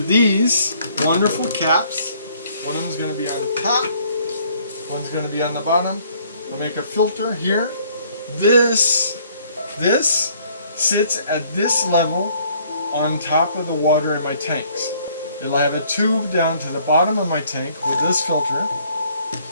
these wonderful caps. One of them is going to be on the top, one's going to be on the bottom. We'll make a filter here. This sits at this level on top of the water in my tanks. It'll have a tube down to the bottom of my tank with this filter,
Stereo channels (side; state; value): both; inverted; correlation -0.61